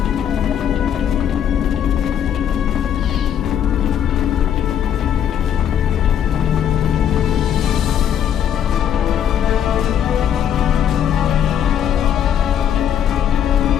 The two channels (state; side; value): quieter; right; 9.5 dB